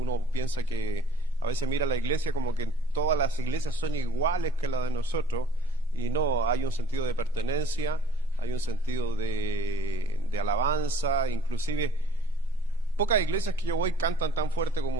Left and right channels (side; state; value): both; normal; correlation 0.53